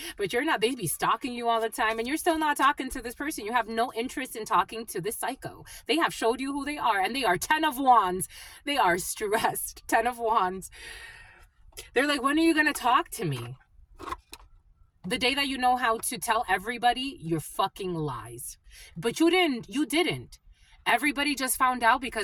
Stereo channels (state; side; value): identical; both; correlation 1.00